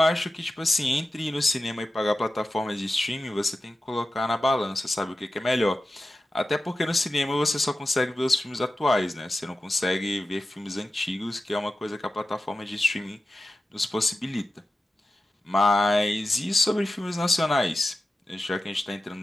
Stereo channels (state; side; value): normal; both; correlation 0.94